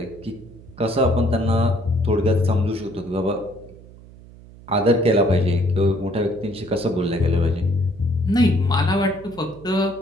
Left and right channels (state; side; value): noise; right; hum, 21 dB below the sound